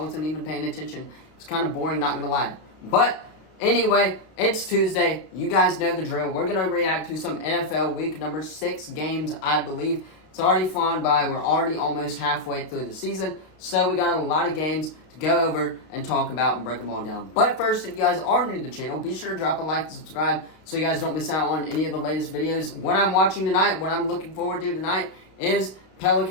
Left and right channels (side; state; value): right; late; 32 ms